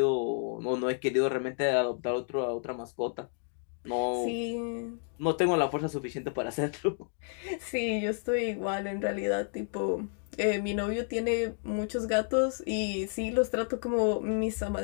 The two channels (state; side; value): silent; right; 56 dB below the other